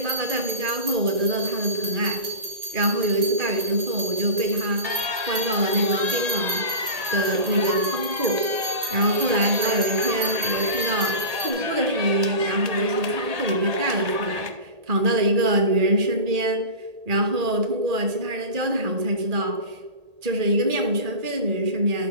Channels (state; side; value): late; left; 1.8 ms